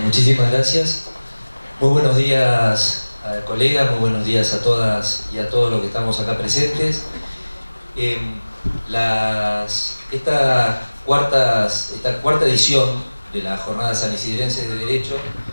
muchísimas gracias. Muy buenos días, colegas, muy buenos días a todas y a todos los que estamos acá presentes. Esta cuarta edición de las Jornadas Sanisidrenses de Derecho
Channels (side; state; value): both; inverted; correlation -1.00